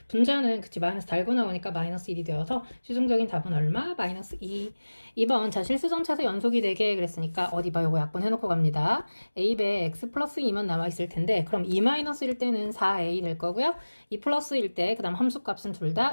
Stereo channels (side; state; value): both; inverted; correlation -1.00